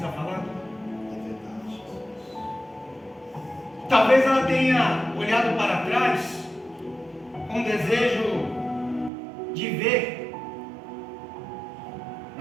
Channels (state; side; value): drops out; left; at 9.1 s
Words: falando? Talvez ela tenha olhado para trás com desejo de ver